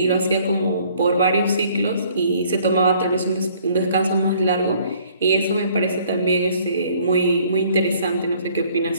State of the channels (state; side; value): inverted; both; correlation -0.60